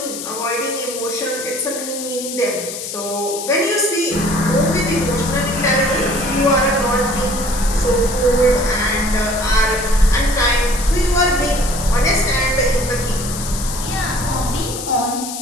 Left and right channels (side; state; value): left; noise; hiss, 8 dB below the sound